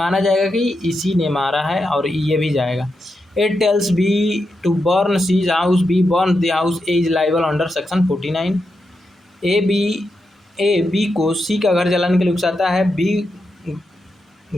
जाएगा कि इसी ने मारा है और ये भी जाएगा। It tells B to burn C's house, B burn the house, A is liable under section 49। A B को सी का घर जलाने के लिए उकसाता है, बी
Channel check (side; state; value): both; normal; correlation 0.86